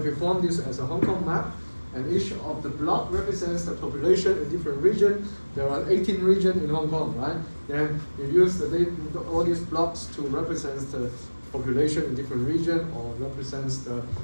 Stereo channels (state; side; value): inverted; both; correlation -1.00